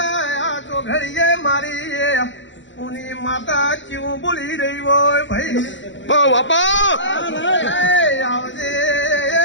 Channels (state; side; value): late; right; 0.54 ms